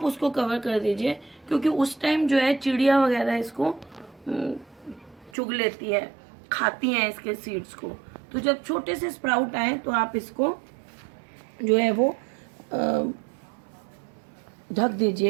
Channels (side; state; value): left; drops out; at 5.3 s